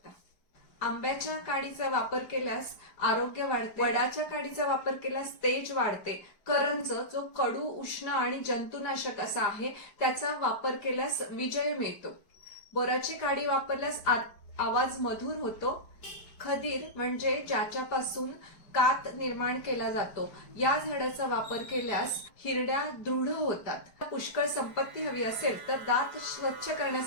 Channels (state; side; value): late; right; 5.0 ms